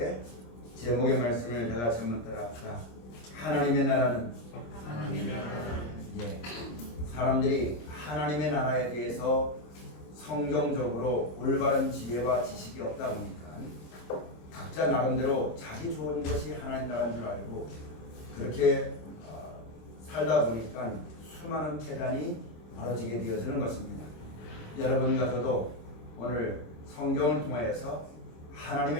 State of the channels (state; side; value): late; right; 26 ms